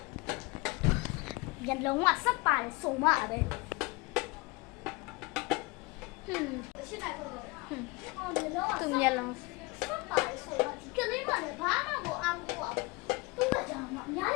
ရလုံးဝစပ်ပါတယ်စုံမပဲရှင်းလိုက်တော့သူမျက်လုံးစပ်ပါတယ်စုံမဒီကလေးမလည်းဘာမှကိုအောင်ကိုအောင်သူ့ကကြောင်မအများကြ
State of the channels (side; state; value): right; quieter; 25.5 dB